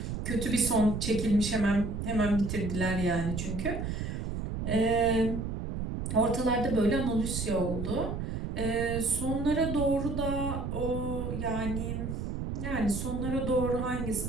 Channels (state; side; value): noise; right; rumble, 4 dB below the sound